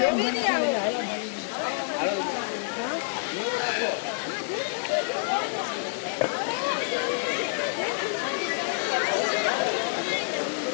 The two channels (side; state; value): right; silent; digital silence